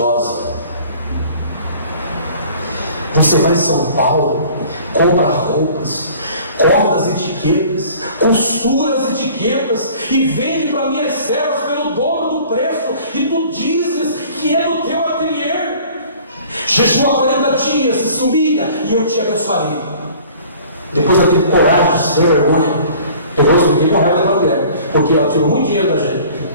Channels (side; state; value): both; inverted; correlation -0.49